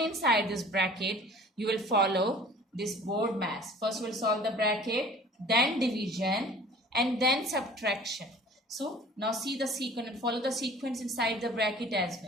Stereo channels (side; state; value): both; normal; correlation 0.47